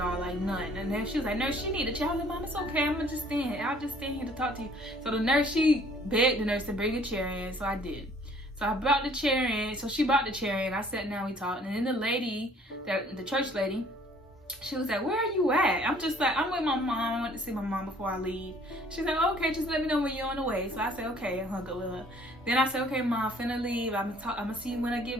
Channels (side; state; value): both; normal; correlation 0.57